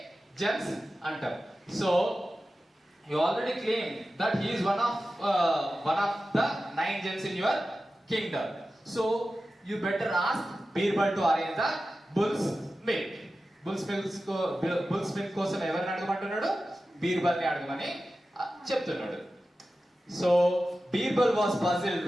Gems అంటాం. So you already claimed that he is one of the 9 gems in your kingdom. So you better ask Birbal to arrange the bull's milk. Bull's milk కోసం ఎవరిని అడగమంటున్నాడు? బీర్బల్ని అడగమని చెప్తున్నాడు. So Birbal was puzzled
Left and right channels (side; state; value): both; normal; correlation 0.94